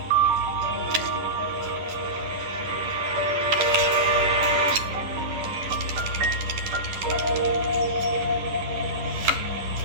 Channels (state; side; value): late; left; 10 ms